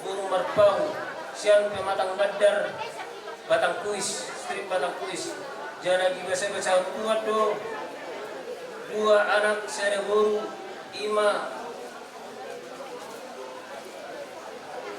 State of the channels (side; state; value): both; identical; correlation 1.00